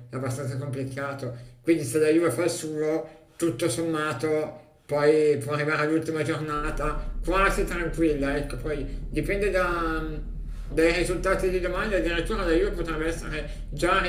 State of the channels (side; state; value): both; identical; correlation 1.00